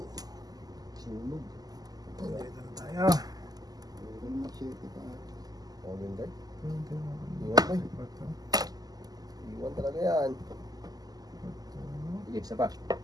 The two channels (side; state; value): left; late; 0.18 ms